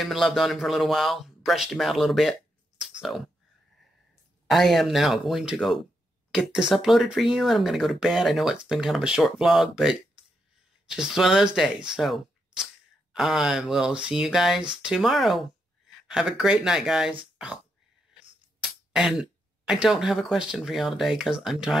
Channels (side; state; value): both; normal; correlation 0.81